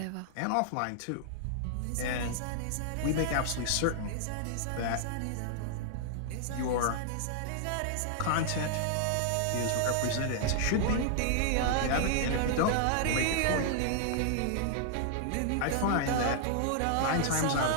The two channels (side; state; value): both; different; correlation -0.01